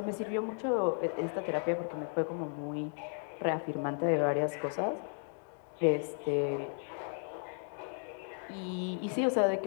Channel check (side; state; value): right; silent; 55 dB below the other